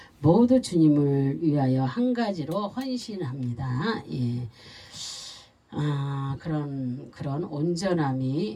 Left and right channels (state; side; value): identical; both; correlation 1.00